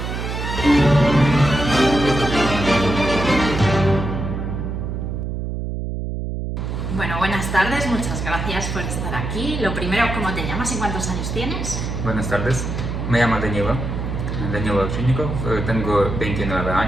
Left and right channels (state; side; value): noise; right; hum, 4 dB below the sound